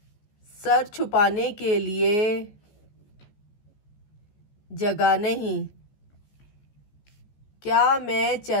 सर छुपाने के लिए जगह नहीं, क्या मैं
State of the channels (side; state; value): right; late; 14 ms